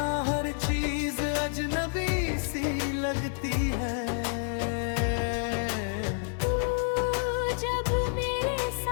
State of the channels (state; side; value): silent; right; 59 dB below the other